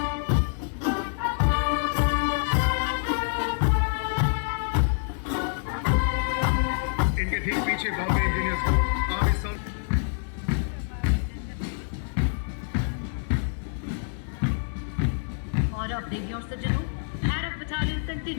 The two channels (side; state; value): right; silent; digital silence